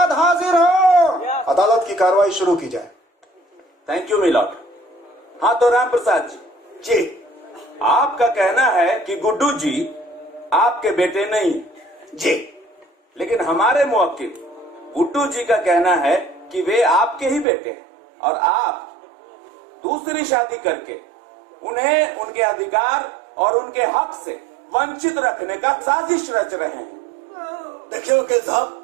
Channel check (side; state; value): left; drops out; at 17.4 s